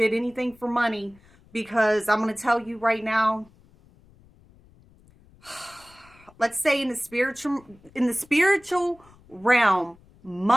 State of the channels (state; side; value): noise; left; rumble, 28 dB below the sound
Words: anything for money, because I'm gonna tell you right now. Let's say in the spiritual realm,